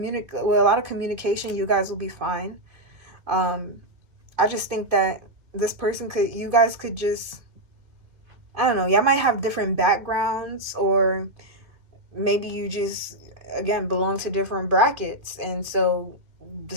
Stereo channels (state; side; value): late; left; 2.5 ms